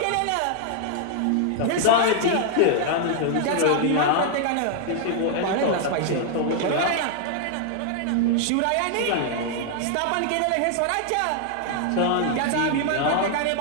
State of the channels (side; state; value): both; different; correlation 0.00